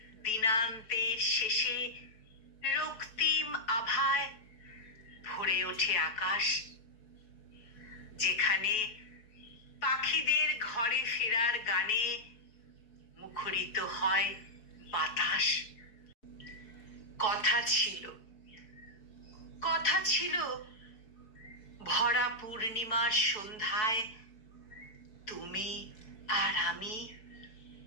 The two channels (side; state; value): right; late; 4.6 ms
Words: দিনান্তের শেষে রক্তিম আভায় ভরে ওঠে আকাশ, যেখানে পাখিদের ঘরে ফেরার গানে মুখরিত হয় বাতাস। কথা ছিল ভরা পূর্ণিমার সন্ধ্যায় তুমি আর আমি